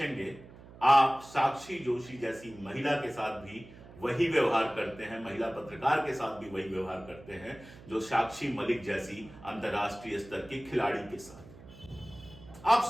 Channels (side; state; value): right; noise; hum, 19 dB below the sound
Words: आप साक्षी जोशी जैसी महिला के साथ भी वही व्यवहार करते हैं, महिला पत्रकार के साथ भी वही व्यवहार करते हैं जो साक्षी मलिक जैसी अंतर्राष्ट्रीय स्तर की खिलाड़ी के साथ। आप